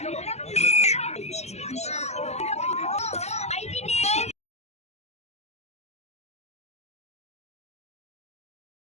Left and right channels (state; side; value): late; right; 0.32 ms